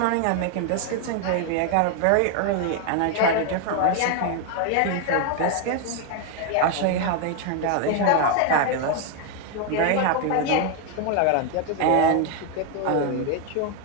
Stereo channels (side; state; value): both; different; correlation 0.01